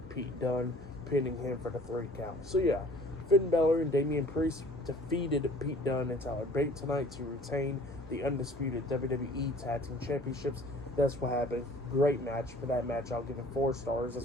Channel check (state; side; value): normal; both; correlation 0.51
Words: Pete Dunne, pinning him for the 3 count. So yeah, Finn Balor and Damian Priest defeated Pete Dunne and Tyler Bate tonight to retain the undisputed WWE Tag Team Championships. That's what happened. Great match. For that match, I'll give it 4 stars.